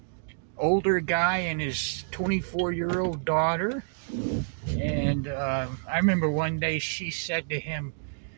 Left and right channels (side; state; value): left; silent; digital silence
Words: older guy and his 24-year-old daughter. And I remember one day she said to him,